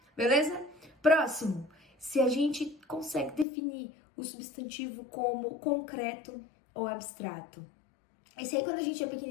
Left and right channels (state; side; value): drops out; right; at 3.5 s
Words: Beleza? Próximo, se a gente consegue definir o substantivo como concreto ou abstrato. Esse aí, quando a gente é